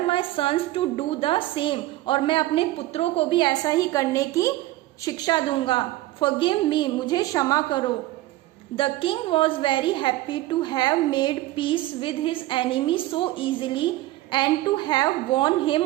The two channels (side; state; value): left; quieter; 16.8 dB